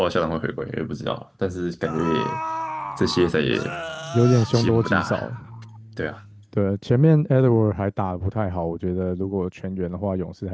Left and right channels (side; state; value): both; identical; correlation 1.00